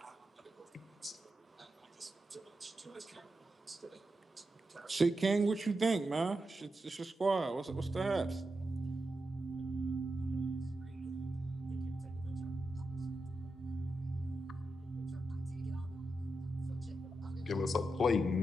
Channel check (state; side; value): normal; both; correlation 0.88